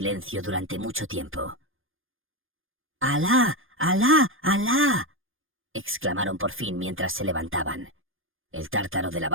durante mucho tiempo. «¡Alá! ¡Alá! ¡Alá!», exclamaron por fin mientras se levantaban. El tártaro de la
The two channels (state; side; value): late; left; 0.59 ms